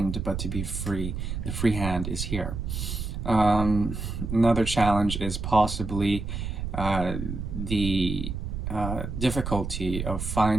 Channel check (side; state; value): right; noise; rumble, 4 dB below the sound